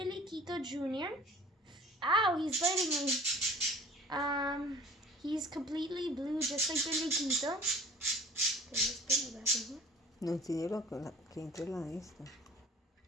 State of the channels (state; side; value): normal; both; correlation 0.48